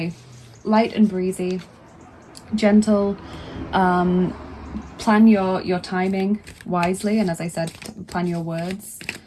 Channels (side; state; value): both; identical; correlation 1.00